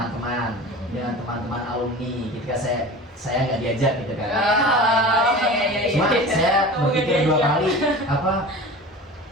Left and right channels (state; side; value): normal; both; correlation 0.35